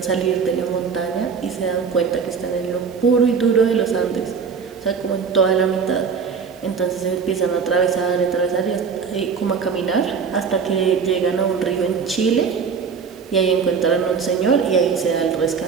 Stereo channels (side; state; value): left; quieter; 6.0 dB